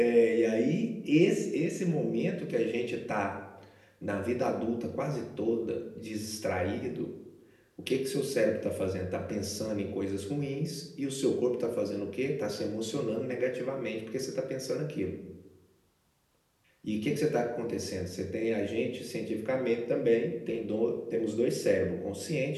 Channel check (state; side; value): identical; both; correlation 1.00